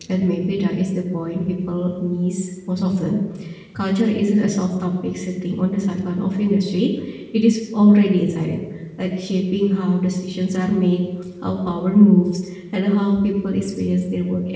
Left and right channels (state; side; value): identical; both; correlation 1.00